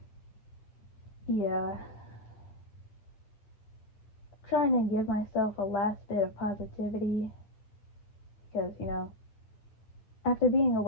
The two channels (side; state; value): right; late; 9.5 ms